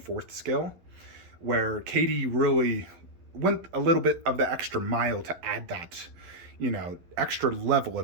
scale, where KD really went a little bit of the extra mile to add that, you know, extra level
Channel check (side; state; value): left; late; 12 ms